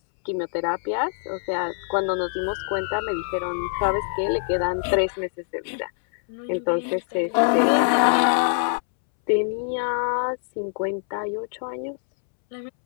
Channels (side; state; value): right; silent; 62 dB below the other